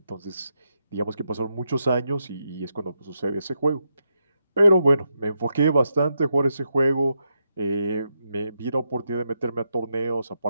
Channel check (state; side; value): inverted; both; correlation -0.83